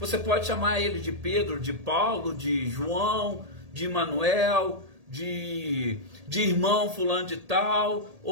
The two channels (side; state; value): left; late; 1.8 ms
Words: pode chamar ele de Pedro, de Paulo, de João, de Manuel, de irmão fulano de tal,